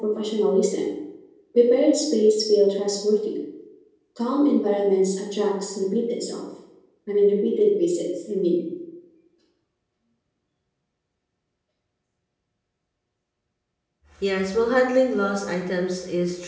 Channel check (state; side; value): identical; both; correlation 1.00